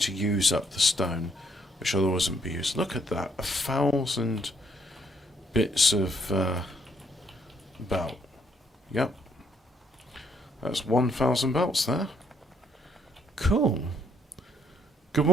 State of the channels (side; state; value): both; normal; correlation 0.70